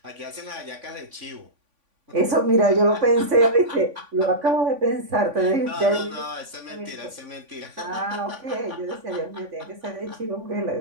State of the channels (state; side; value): late; left; 3.5 ms